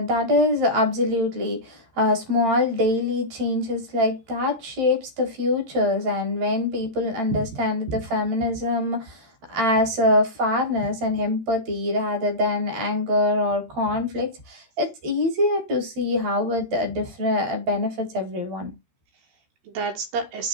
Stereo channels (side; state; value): left; late; 13 ms